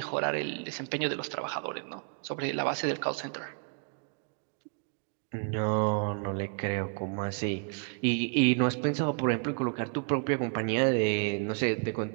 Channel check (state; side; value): quieter; left; 39.6 dB